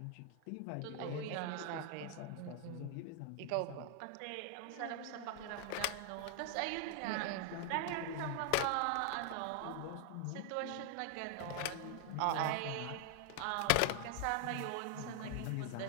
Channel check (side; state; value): both; different; correlation 0.00